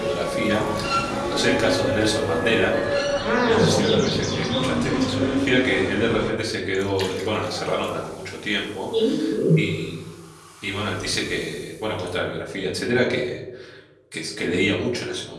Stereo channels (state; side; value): identical; both; correlation 1.00